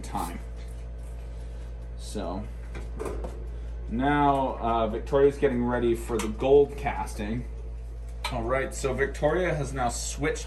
time. So now Victoria's getting ready for the gold casting. All right, so Victoria has now switched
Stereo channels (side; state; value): both; identical; correlation 1.00